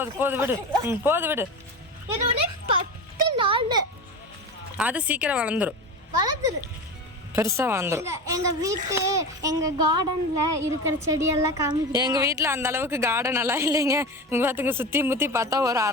விடு. போது விடு. அது சீக்கிரம் வளர்ந்துரும், பெருசா வளர்ந்துரும். எங்க கார்டன்ல இருக்கிற செடியெல்லாம் காமிக்க. எங்க வீட்டுல அந்த அளவுக்கு கார்டன் எல்லாம் இல்லைங்க. இங்க பாத்துங்க, சுத்தி முத்தி பார்த்தா ஒரு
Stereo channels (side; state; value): both; normal; correlation 0.26